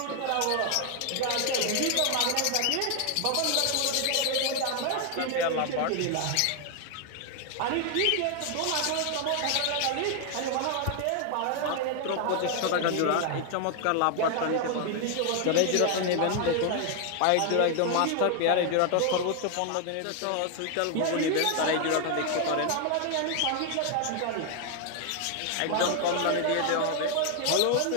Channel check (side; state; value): both; different; correlation 0.00